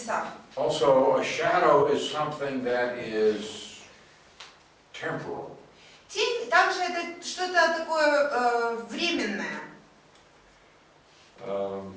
Also, a shadow is something that is temporal. Тень также это что-то такое временное. And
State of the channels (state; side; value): identical; both; correlation 1.00